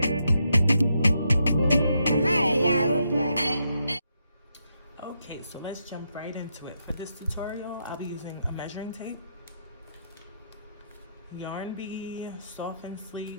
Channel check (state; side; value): inverted; both; correlation -0.80